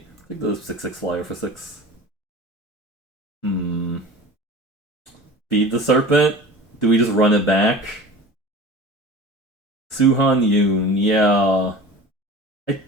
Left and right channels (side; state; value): both; normal; correlation 0.37